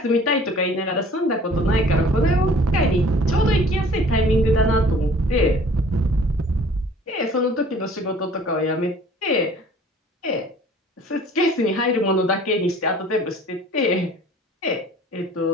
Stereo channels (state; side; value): normal; both; correlation 0.51